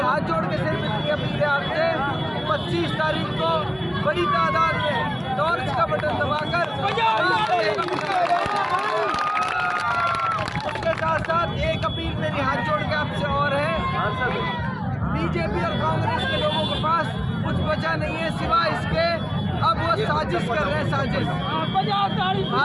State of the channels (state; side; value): identical; both; correlation 1.00